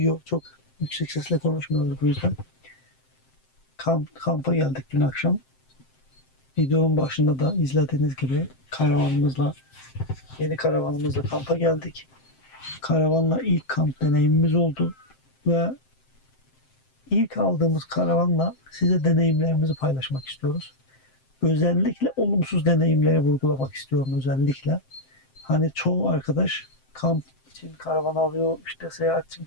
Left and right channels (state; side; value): late; right; 7.7 ms